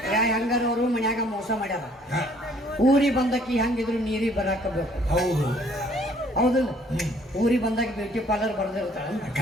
ಹೆಂಗಾರ ಅವರು ಮನ್ಯಾಗ ಮೋಸ ಮಾಡ್ಯಾರ ಊರಿಗೆ ಬಂದಕ್ಕಿ ಹೆಂಗಿದ್ರು ನೀರಿಗೆ ಬರಾಕಬೇಕು ಹೌದು ಹೌದಿಲ್ಲ ಊರಿಗೆ ಬಂದಾಗ ಬ್ಯೂಟಿ ಪಾರ್ಲರ್ ಬರ್ದಿರ್ತಾಳ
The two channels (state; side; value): normal; both; correlation 0.60